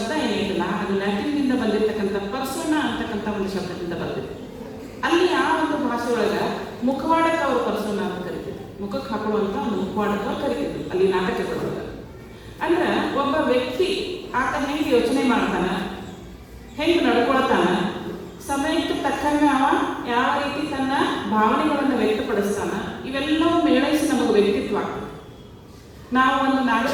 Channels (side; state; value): both; identical; correlation 1.00